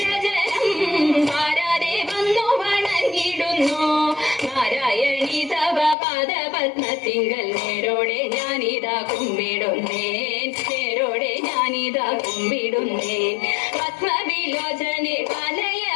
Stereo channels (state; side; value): drops out; right; at 6.0 s